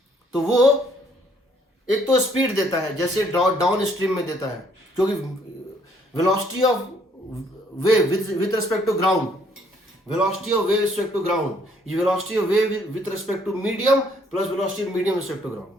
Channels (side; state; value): both; normal; correlation 0.65